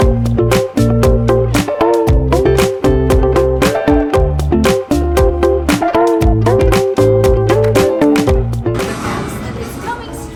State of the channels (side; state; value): both; identical; correlation 1.00